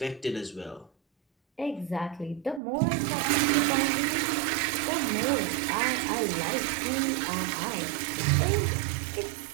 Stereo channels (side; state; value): left; drops out; at 2.6 s